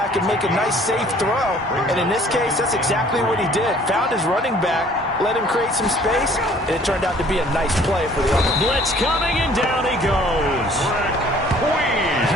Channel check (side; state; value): both; normal; correlation 0.55